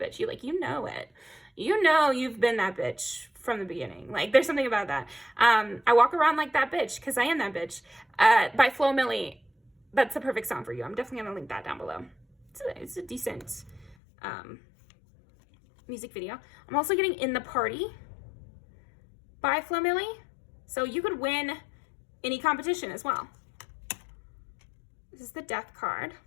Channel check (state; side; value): drops out; right; at 14.0 s